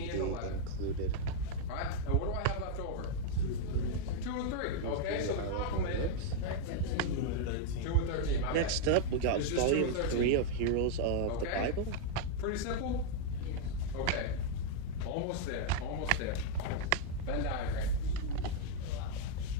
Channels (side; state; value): both; different; correlation 0.00